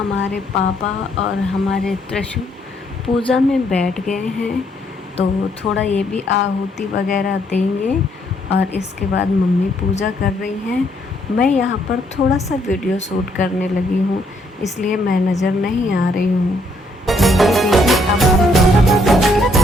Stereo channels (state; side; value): normal; both; correlation 0.70